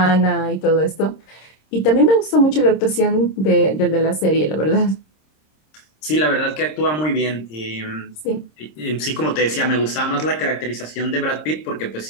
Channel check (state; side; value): late; right; 26 ms